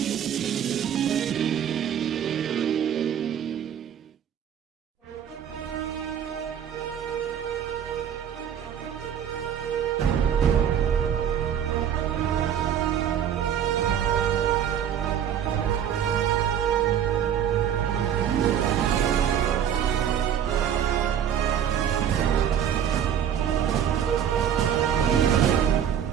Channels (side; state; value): left; quieter; 9.2 dB